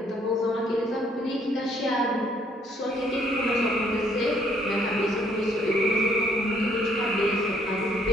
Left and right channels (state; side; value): normal; both; correlation 0.66